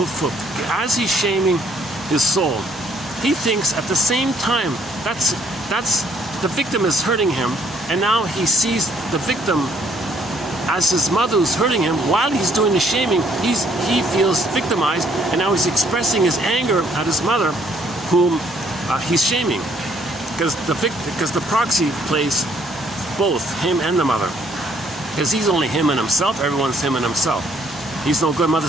as he's shaming his soul, he thinks at the same time that's the victim is hurting him, and now he sees the victim as his mother who's hurting him. While he's doing the shaming, he feels victimized, and now he's expressing his anger at his mother, whom he's shaming, because the proxy plays both him and the mother, because he's only him and himself. Everyone's him and himself. He's no good,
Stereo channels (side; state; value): both; normal; correlation 0.66